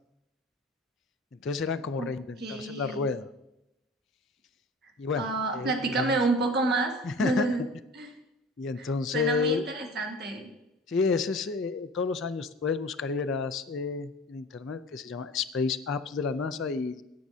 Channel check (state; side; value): normal; both; correlation 0.40